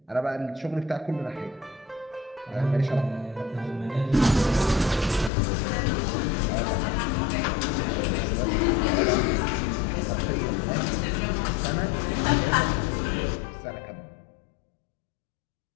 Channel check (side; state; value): right; drops out; at 5.3 s